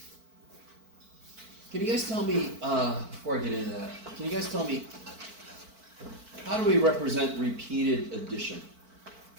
Can you guys tell me, before I get into that, can you guys tell me, how do we represent repeated addition?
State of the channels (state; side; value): late; left; 4.5 ms